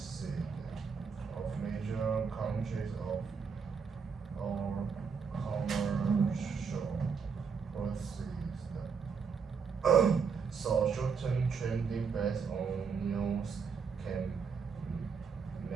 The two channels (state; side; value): quieter; left; 5.8 dB